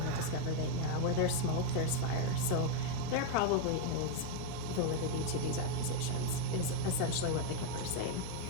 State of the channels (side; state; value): both; different; correlation 0.00